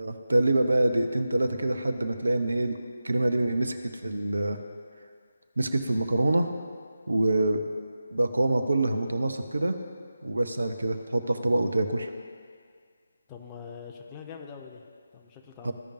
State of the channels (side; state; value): both; inverted; correlation -0.93